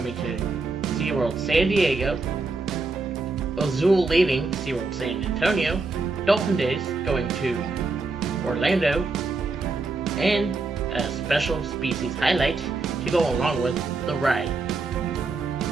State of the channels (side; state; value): left; quieter; 3.7 dB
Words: to SeaWorld San Diego, Azul leaving SeaWorld San Antonio, Dolphin Days going to Orlando, and a special species highlight to go along with the ride,